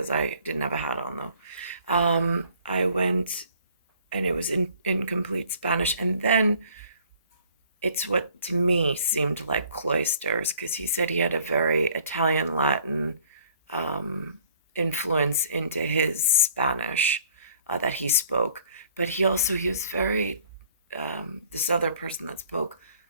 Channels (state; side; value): inverted; both; correlation -0.57